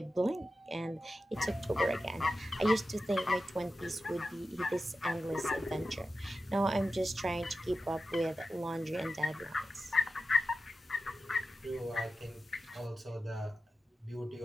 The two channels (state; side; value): normal; both; correlation 0.91